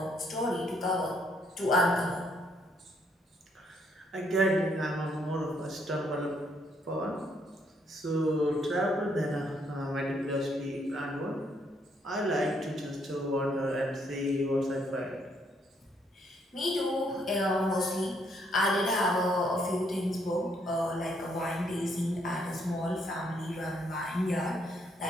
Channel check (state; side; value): normal; both; correlation 0.71